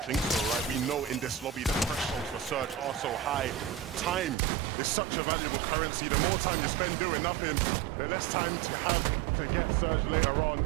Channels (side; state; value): left; drops out; at 4.4 s